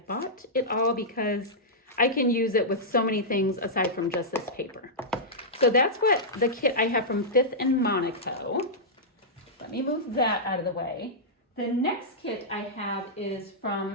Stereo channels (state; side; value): normal; both; correlation -0.11